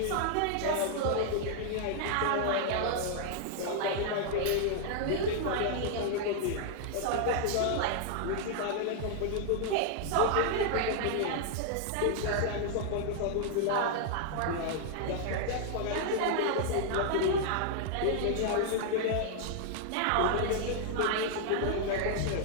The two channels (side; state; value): both; different; correlation 0.00